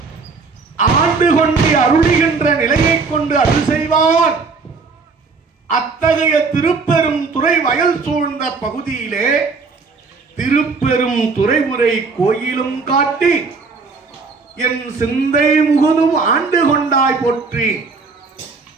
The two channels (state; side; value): quieter; left; 4.5 dB